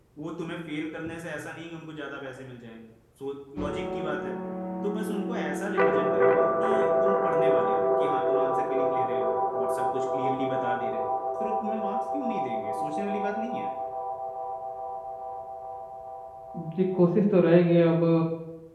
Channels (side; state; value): both; identical; correlation 1.00